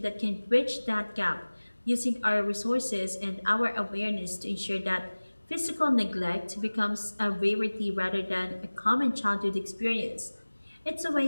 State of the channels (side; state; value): both; inverted; correlation -1.00